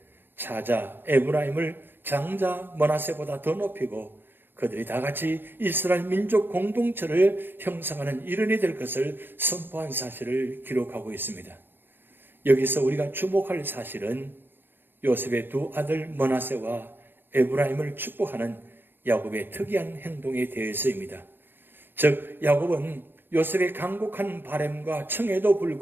차자 에브라임을 장자 므낫세보다 더 높이고 그들이 다 같이 이스라엘 민족 공동체를 형성하는 일원이 될 것을 선포한 사실을 기록하고 있습니다. 여기서 우리가 주목할 사실은 요셉의 두 아들 므낫세와 에브라임을 축복하는 야곱의 특이한 행동에 대해서입니다. 즉 야곱은 요셉의 간곡한 바램과 청에도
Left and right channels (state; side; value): late; left; 0.097 ms